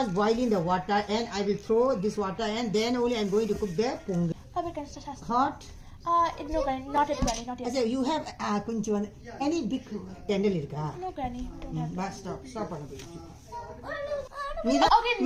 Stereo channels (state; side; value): identical; both; correlation 1.00